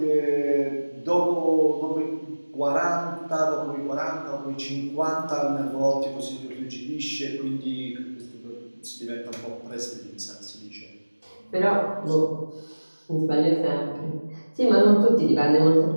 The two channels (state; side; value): inverted; both; correlation -1.00